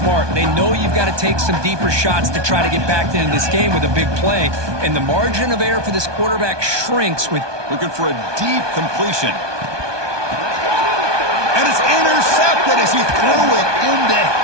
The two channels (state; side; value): late; left; 1.2 ms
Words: They know you've got to take some deeper shots to try to get back into this game with a big play. And the margin of error for this quarterback shrinks with... Looking for a deep completion. And it's intercepted as he threw it into